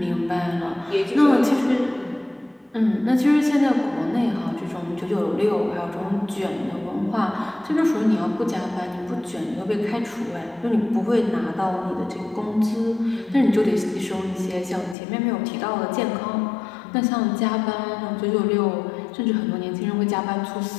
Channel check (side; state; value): right; drops out; at 15.0 s